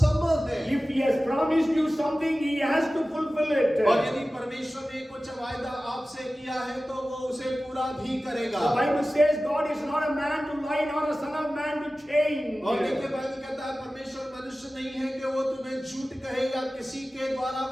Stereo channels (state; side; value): normal; both; correlation 0.96